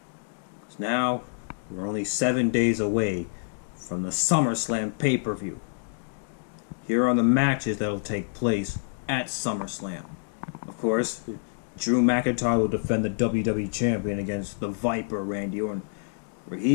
now we're only 7 days away from the SummerSlam pay-per-view. Here are the matches that will take place at SummerSlam. Of course, Drew McIntyre will defend the WWE Champion against the Viper, Randy Orton, where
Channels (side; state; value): right; silent; digital silence